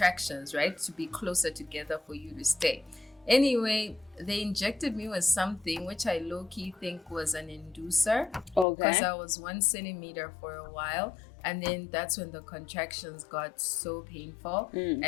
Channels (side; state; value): right; drops out; at 8.7 s